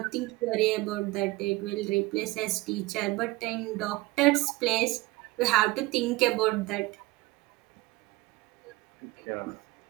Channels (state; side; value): quieter; left; 20.9 dB